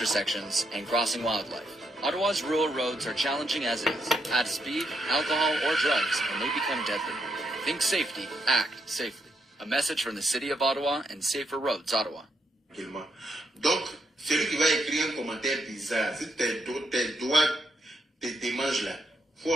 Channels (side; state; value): both; normal; correlation 0.79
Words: and crossing wildlife. Ottawa's rural roads are challenging as is. Add speed, alcohol, or drugs, and they become deadly. Think safety, act safely. A message from the City of Ottawa and Safer Roads, Ottawa. Donc, celui qui va écrire un commentaire bizarre, si tes doigts te mangent là, faut